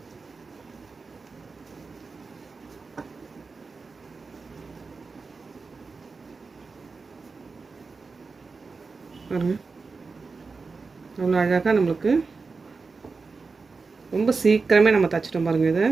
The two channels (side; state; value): left; quieter; 4.4 dB